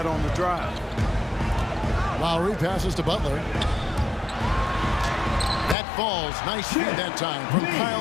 on the drive. Lowry passes to Butler. That falls. Nice feed that time from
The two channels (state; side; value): drops out; right; at 5.8 s